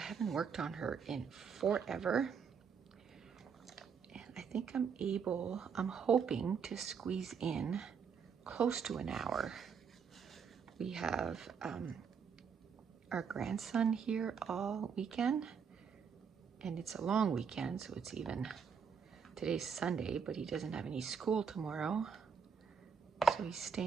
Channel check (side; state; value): left; quieter; 6.5 dB